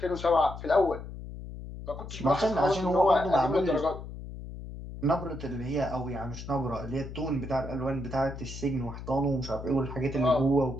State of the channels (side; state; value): left; noise; hum, 10 dB below the sound